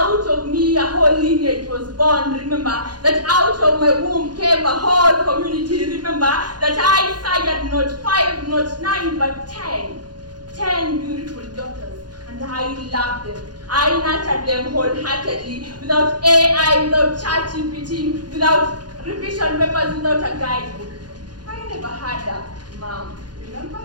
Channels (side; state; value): left; late; 0.70 ms